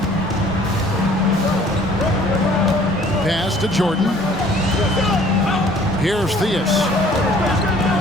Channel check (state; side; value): normal; both; correlation 0.55